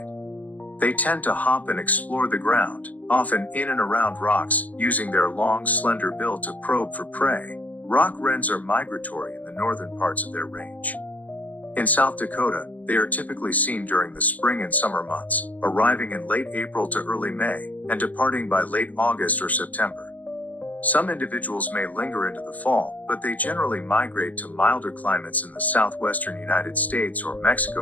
They tend to hop and explore the ground, often in and around rocks, using their long, slender bill to probe for prey. Rock wrens are migratory in the northern parts of their range. In South Dakota, they are typically seen during the spring and summer months, arriving in late April to early May, and departing by late August or September. Some individuals may linger into the fall, but they generally migrate to milder climates in the southwestern United States or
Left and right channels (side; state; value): right; late; 0.077 ms